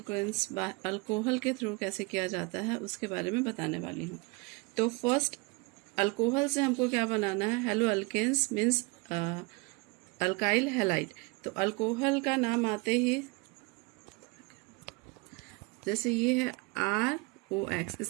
alcohol के थ्रू कैसे किया जाता है उसके बारे में बताने वाली हूँ। तो फर्स्ट अल्कोहल से हमको क्या बनाना है, haloalkanes means alkyl halide. तो अल्कोहल का नाम आते ही जैसे ये है ROX,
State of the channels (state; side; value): quieter; left; 28.0 dB